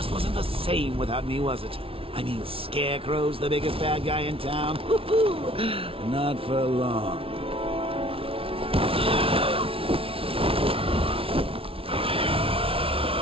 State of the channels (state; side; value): late; left; 0.26 ms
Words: wasn't the same without me, was it? I mean, Scarecrow's the biggest bad guy in town. Not for long.